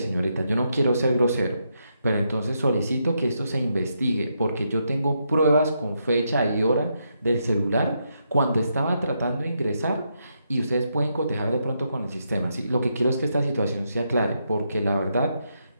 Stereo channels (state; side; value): inverted; both; correlation -0.80